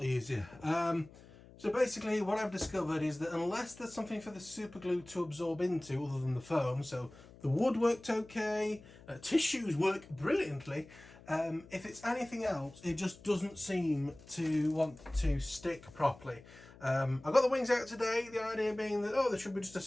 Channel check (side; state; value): left; noise; hum, 21 dB below the sound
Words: easier. So basically what I've discovered is that unless there's something for the super glue to absorb into other than the foam, so the wood worked okay, tissues work brilliantly, if it's anything else, it just doesn't seem to want to stick properly. I got the wings out today, the idea being that, there should be just a